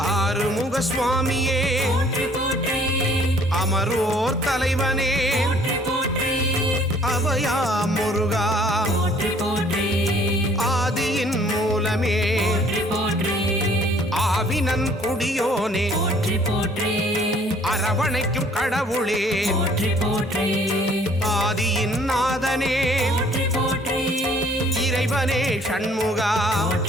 ஆறுமுக சுவாமியே போற்றி போற்றி அமரோர் தலைவனே போற்றி போற்றி அபயா முருகா போற்றி போற்றி ஆதியின் மூலமே போற்றி போற்றி ஆவினன் குடியோனே போற்றி போற்றி அரவணைக்கும் கடவுளே போற்றி போற்றி ஆதியின் நாதனே போற்றி போற்றி இறைவனே ஷண்முகா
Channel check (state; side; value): normal; both; correlation 0.58